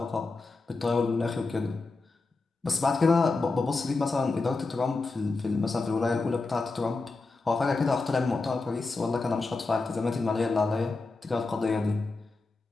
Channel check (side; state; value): right; quieter; 3.6 dB